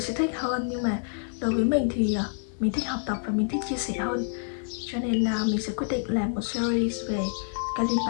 thích hơn. Nhưng mà đối với mình thì mình thích học tập và mình thích chia sẻ hơn, cho nên mình sẽ quyết định làm một series về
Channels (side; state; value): right; silent; 60 dB below the other